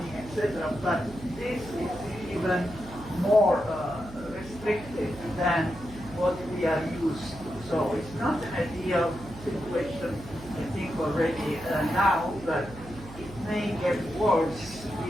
etc. But this is even more restrictive than what we are used to. So it's not an ideal situation, I think, already now, but it may get worse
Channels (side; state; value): right; noise; hum, 15 dB below the sound